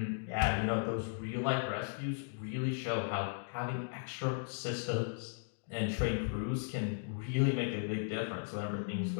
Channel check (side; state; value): right; silent; digital silence